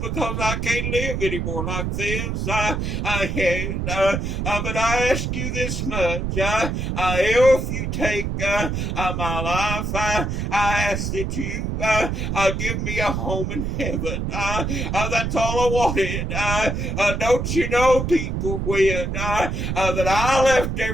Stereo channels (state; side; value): noise; right; rumble, 2 dB below the sound